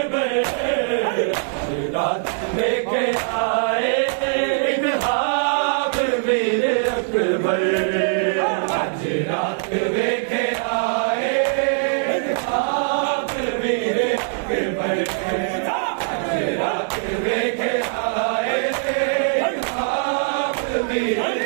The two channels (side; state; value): left; silent; 65 dB below the other